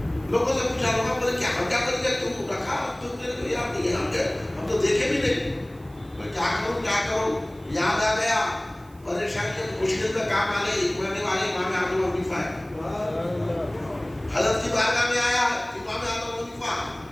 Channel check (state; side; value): noise; right; hiss, 29 dB below the sound